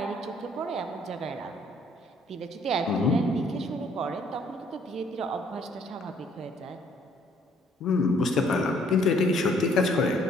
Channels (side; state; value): both; normal; correlation 0.63